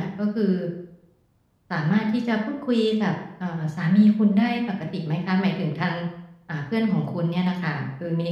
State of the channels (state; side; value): identical; both; correlation 1.00